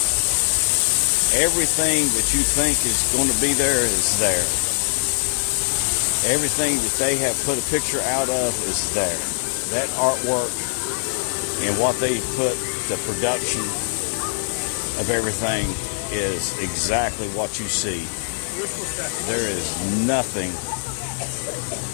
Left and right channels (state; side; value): silent; right; digital silence